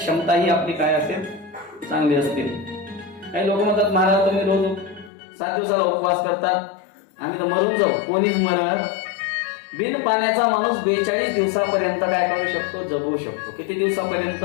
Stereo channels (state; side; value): drops out; right; at 5.1 s